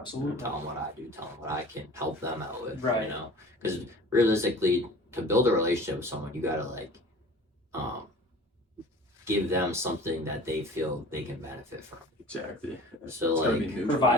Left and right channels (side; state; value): both; normal; correlation 0.43